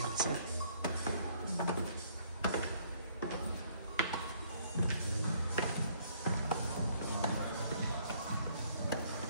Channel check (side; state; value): both; inverted; correlation -0.63